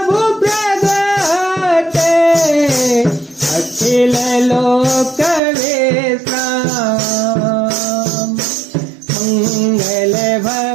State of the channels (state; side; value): drops out; left; at 5.4 s